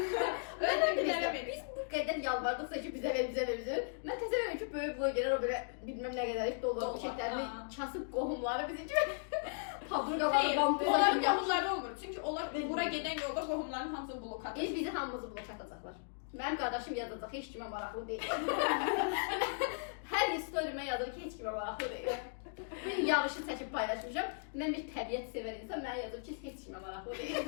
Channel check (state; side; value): silent; right; digital silence